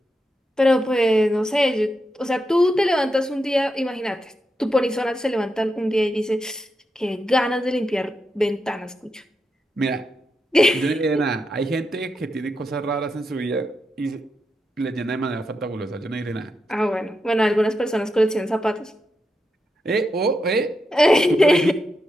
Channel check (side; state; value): both; normal; correlation 0.85